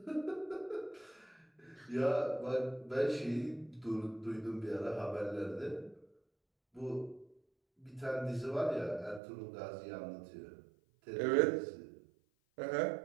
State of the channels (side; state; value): left; drops out; at 9.2 s